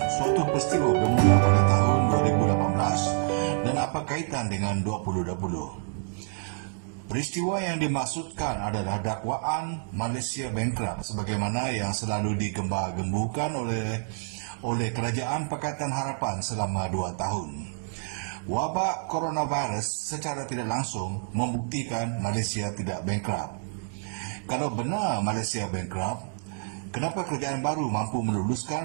suatu peristiwa bermula pada tahun 2018 dan apa kaitan dengan 2020? Peristiwa yang dimaksudkan adalah dakwaan Malaysia Bankrupt sebagaimana yang selalu digembar-gemburkan oleh Kerajaan Pakatan Harapan selama 2 tahun. Wabak coronavirus secara tidak langsung membuktikan Malaysia tidak bankrupt. Kalau benar Malaysia bankrupt, kenapa kerajaan baru mampu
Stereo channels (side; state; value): left; silent; digital silence